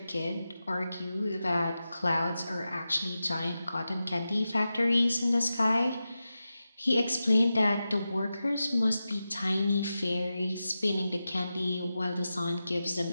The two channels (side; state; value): both; inverted; correlation -0.92